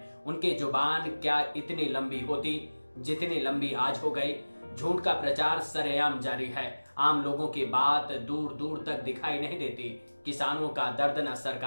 उनकी जुबान क्या इतनी लंबी होती जितनी लंबी आज हो गई। झूठ का प्रचार सरेआम जारी है। आम लोगों की बात दूर दूर तक दिखाई नहीं देती। किसानों का दर्द न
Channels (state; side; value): inverted; both; correlation -1.00